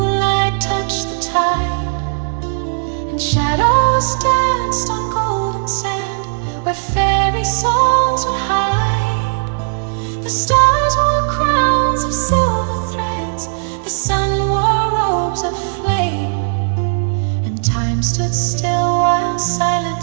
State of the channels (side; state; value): left; silent; digital silence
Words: touched the tide and shadows danced on golden sand where fairy songs would hide. The stars wore crowns of silver threads, the sun wore robes of flame, and time stood still while